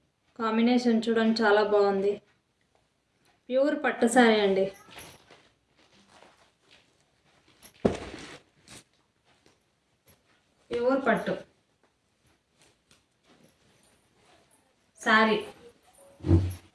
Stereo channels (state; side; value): identical; both; correlation 1.00